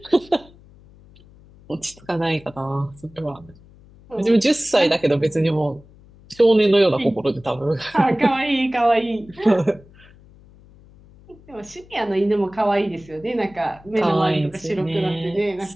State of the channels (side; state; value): left; noise; hum, 25 dB below the sound